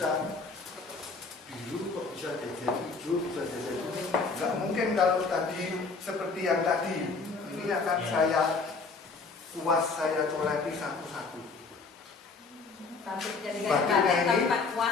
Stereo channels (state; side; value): quieter; right; 4.3 dB